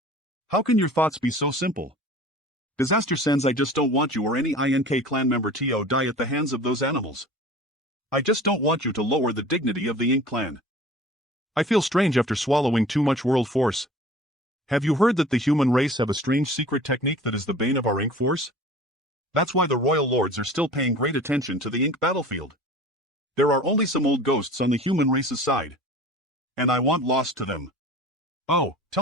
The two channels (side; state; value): both; normal; correlation 0.43